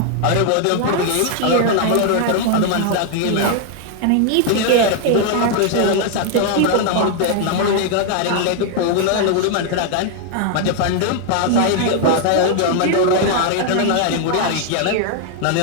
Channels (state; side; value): different; both; correlation 0.00